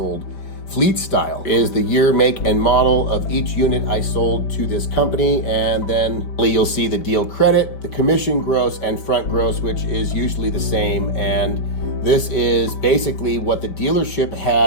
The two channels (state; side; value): late; right; 5.2 ms